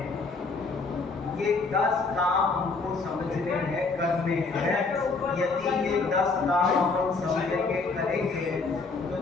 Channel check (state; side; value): quieter; right; 4.1 dB